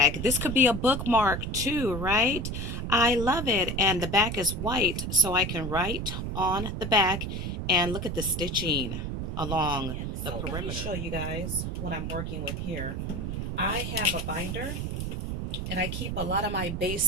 This could be a bookmark too, right? I love it. And the back is white, so I can write on the back. And look at the stitching along the perimeter. Let me show you guys what I'm working with here. I have a binder, and I keep a lot of my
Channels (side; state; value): right; noise; rumble, 4 dB below the sound